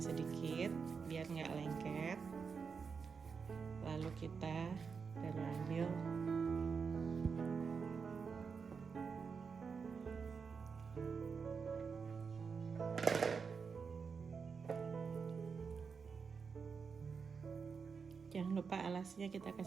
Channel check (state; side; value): quieter; left; 5.6 dB